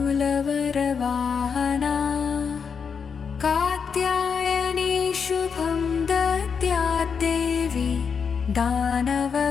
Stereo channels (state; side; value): quieter; right; 6.2 dB